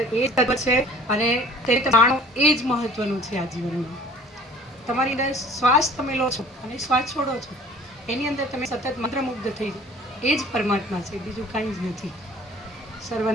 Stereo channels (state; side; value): normal; both; correlation 0.49